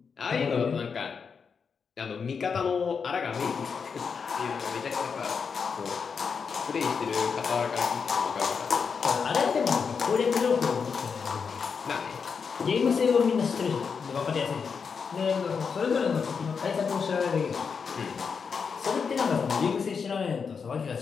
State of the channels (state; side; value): quieter; right; 5.9 dB